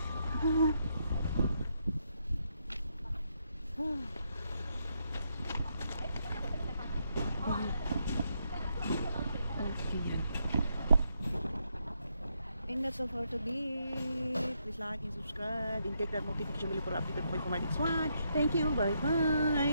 And that's all for today. Please like and subscribe and click that notification bell for updated po for my next one. Thank you.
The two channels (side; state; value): both; inverted; correlation -0.78